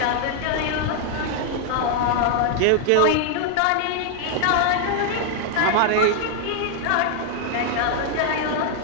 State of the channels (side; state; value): both; different; correlation 0.00